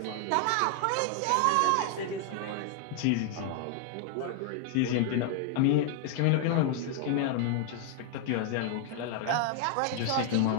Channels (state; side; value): different; both; correlation 0.00